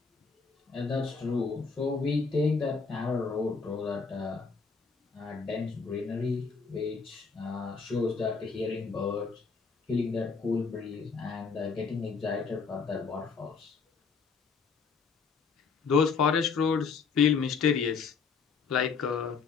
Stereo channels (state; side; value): quieter; right; 5.3 dB